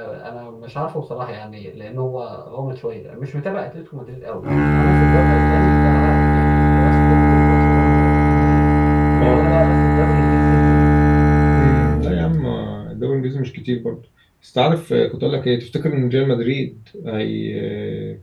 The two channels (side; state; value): both; identical; correlation 1.00